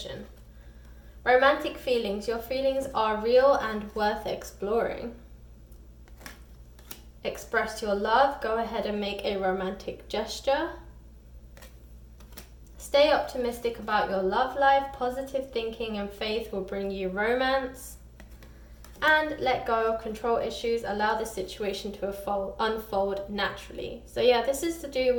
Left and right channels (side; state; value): both; identical; correlation 1.00